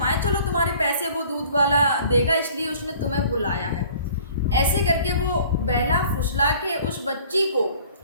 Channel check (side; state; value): both; inverted; correlation -0.51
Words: है, चलो तुम्हारे पैसे वो दूध वाला देगा, इसलिए उसने तुम्हें बुलाया है। ऐसे करके वो बहला फुसला के उस बच्ची को